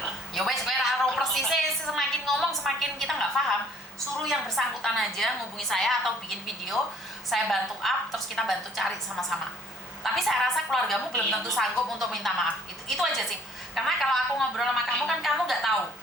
Ya wes, gue tahu persisnya, semakin ngomong semakin kita nggak paham. Suruh yang bersangkutan aja ngubungi saya atau bikin video, saya bantu up, terus kita bantu cari sama-sama. Tapi saya rasa keluargamu belum tentu sanggup untuk minta maaf. Itu aja sih. Karena kalau aku ngobrol sama kamu kan kamu nggak tahu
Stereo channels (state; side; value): normal; both; correlation 0.58